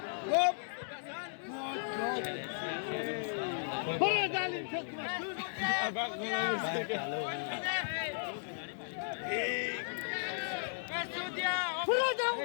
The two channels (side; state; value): right; silent; digital silence